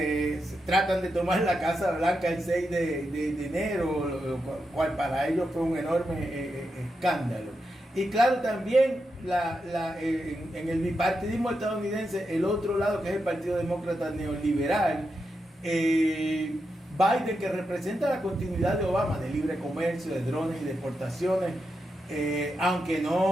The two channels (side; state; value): both; normal; correlation 0.86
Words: tratan de tomar la Casa Blanca el 6 de enero, lo cual para ellos fue un enorme escándalo. Y claro, también en el bipartidismo estadounidense, el otro lado, que es el Partido Demócrata Neoliberal, Biden, que representa la continuidad de Obama, de libre comercio, de drones y de exportaciones, aunque